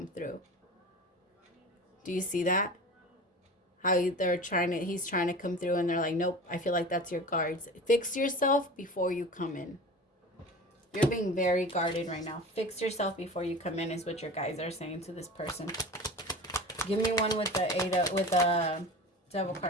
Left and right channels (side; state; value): both; normal; correlation 0.35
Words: through. Do you see that? How he's trying to come through and they're like, nope, I feel like that's your guards. Fix yourself before you come in. You're being very guarded right now. Fix yourself before you come in is what your guys are saying to this person. Give me one with the devil